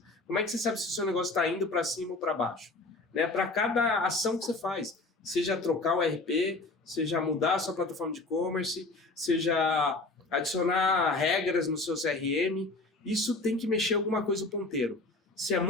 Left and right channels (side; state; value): right; quieter; 3.2 dB